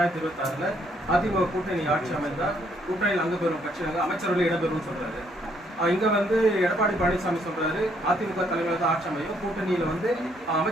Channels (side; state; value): both; normal; correlation 0.69